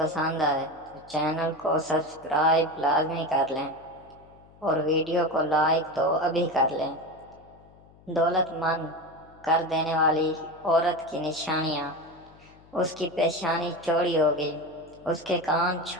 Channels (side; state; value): left; noise; hum, 26 dB below the sound